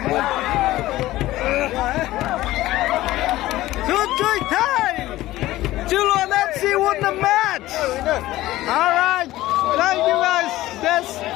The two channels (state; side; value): quieter; right; 16.3 dB